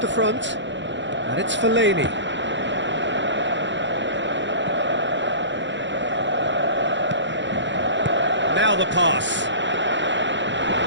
the front, and it's Fellaini. Now the pass.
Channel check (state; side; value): late; left; 0.53 ms